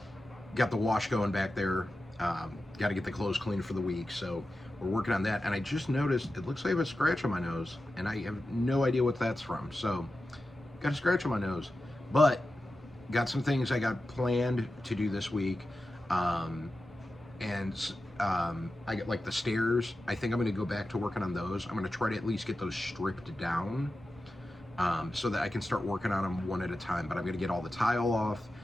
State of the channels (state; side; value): normal; both; correlation 0.92